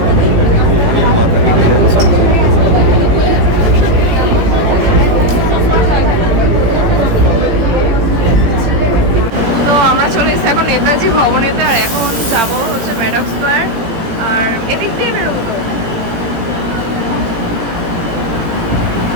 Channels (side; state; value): left; late; 18 ms